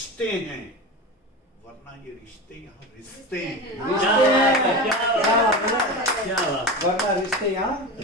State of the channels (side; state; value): both; normal; correlation 0.25